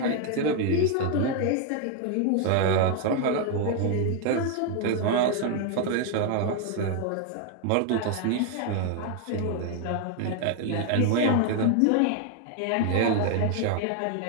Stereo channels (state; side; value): different; both; correlation 0.01